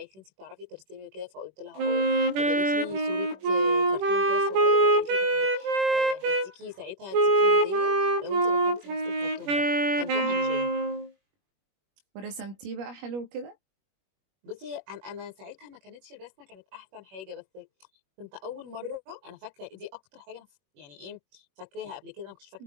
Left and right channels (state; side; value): late; left; 21 ms